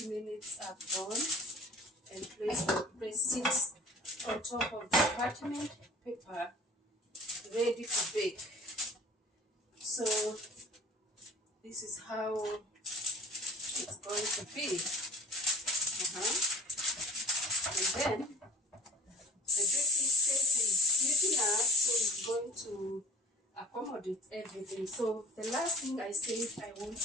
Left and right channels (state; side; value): normal; both; correlation 0.45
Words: minutes are gone, and place it on top of the parchment paper, ready to bake. So this is how it's going to be. And then the baking space is big enough, so it's going to accommodate everything. So the last thing I said I want